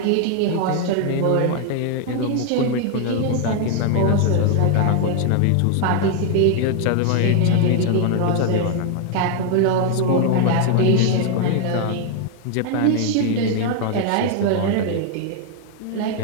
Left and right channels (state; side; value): different; both; correlation 0.00